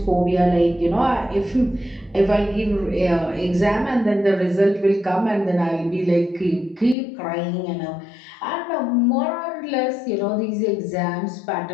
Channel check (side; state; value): right; drops out; at 7.0 s